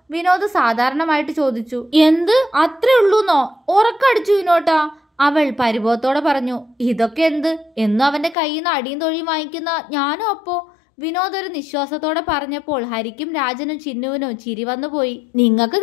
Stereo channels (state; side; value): drops out; right; at 8.3 s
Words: വിനോദ് സാധാരണമായിട്ട് ചോദിച്ചു. എന്ത് അത്രേ ഉള്ളൂന്നോ? ഉറക്കടിച്ചു വിനോട്ടാ, അവൾ പരിഭവത്തോടെ പറഞ്ഞു. ഇതൊക്കെ എന്ത്? എന്നും അവന്റെ കയ്യിൽ നിന്ന് അടിയും തൊഴിയും വാങ്ങിക്കുന്ന ഞാനും അപ്പോ? വിനോദ് ഒരു നിശ്വാസത്തോടെ പറഞ്ഞപ്പോൾ ഹരിക്കും രാജനും ചിന്നുവിനും ചിരി വന്നുപോയി. നിങ്ങൾക്ക്